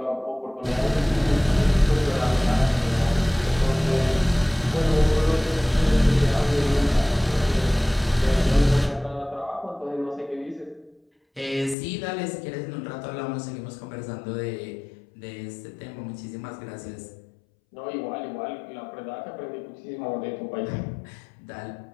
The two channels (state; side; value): drops out; right; at 11.8 s